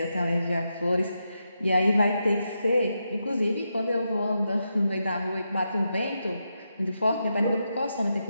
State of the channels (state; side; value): inverted; both; correlation -0.86